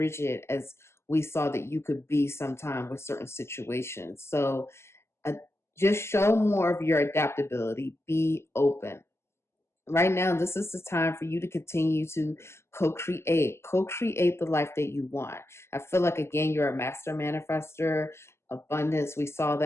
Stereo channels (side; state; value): right; late; 0.13 ms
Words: as we saw that you could be sometime with certain situations. So uh, just show more of your adaptability. Be open. Right now, this is the time for you to continue to co-create the life that you want. I feel like, again, you're a master manifester. Abundance, we saw